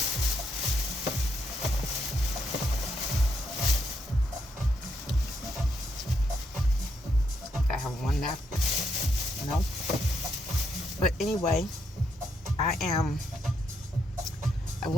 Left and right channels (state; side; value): normal; both; correlation 0.77